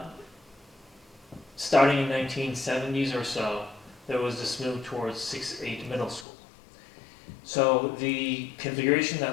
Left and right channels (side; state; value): right; drops out; at 6.2 s